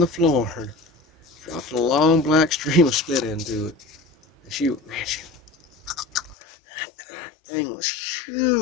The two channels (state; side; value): drops out; right; at 6.4 s